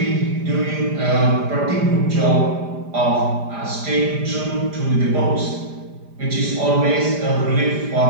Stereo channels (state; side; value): late; left; 5.0 ms